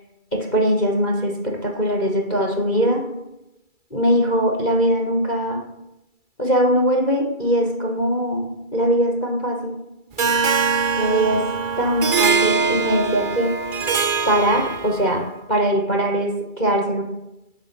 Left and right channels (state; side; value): late; right; 2.3 ms